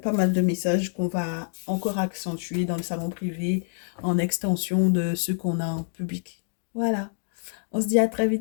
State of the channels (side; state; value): right; silent; digital silence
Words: pas mal de messages qu'on va encore accentuer dans le salon privé en extension de ceux qu'on a en public. Voilà. On se dit à très